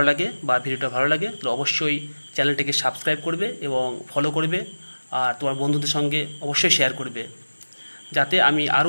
লাগে বা ভিডিওটা ভালো লাগে তাহলে অবশ্যই চ্যানেলটিকে সাবস্ক্রাইব করবে এবং ফলো করবে, আর তোমার বন্ধুদের সঙ্গে অবশ্যই শেয়ার করবে, যাতে আমি আরও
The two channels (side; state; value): both; inverted; correlation -1.00